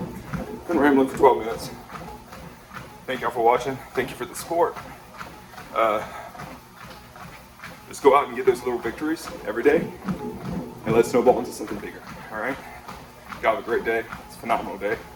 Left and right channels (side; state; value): both; identical; correlation 1.00